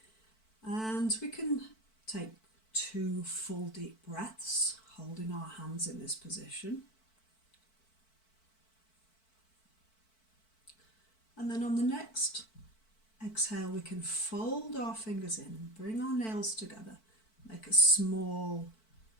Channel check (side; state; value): right; late; 4.5 ms